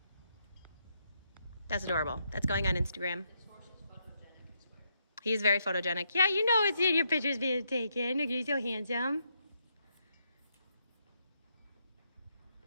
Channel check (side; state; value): both; inverted; correlation -0.77